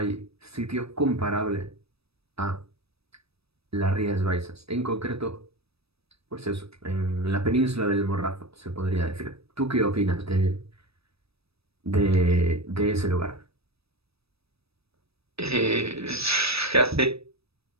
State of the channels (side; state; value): left; late; 0.78 ms